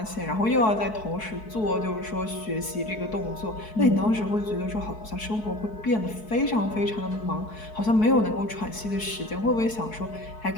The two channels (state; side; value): late; right; 4.6 ms